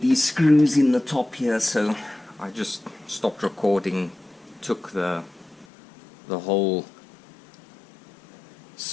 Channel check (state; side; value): drops out; right; at 5.7 s